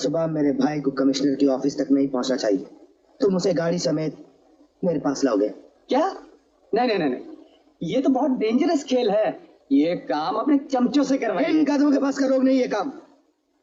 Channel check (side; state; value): both; identical; correlation 1.00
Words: मेरे भाई को कमिश्नर की ऑफिस तक नहीं पहुंचना चाहिए। तुम उसे गाड़ी समेत मेरे पास लाओगे। क्या? नहीं नहीं नहीं, ये तो बहुत डेंजरस खेल है। ये काम अपने चमचों से करवाइए। इन कदमों के पास का रोग नहीं ये काम।